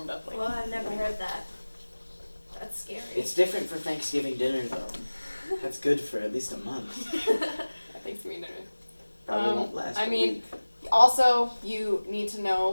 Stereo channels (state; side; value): inverted; both; correlation -1.00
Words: up. Like Well, I've never heard that. That's scary. It's different for Thanksgiving dinner though. That's good for at least a month. I think dinner. Probably won't last. I a mean, week. Also, you need to